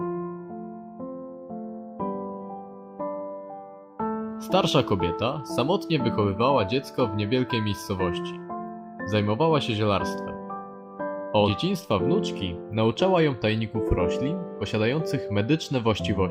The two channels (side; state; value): both; identical; correlation 1.00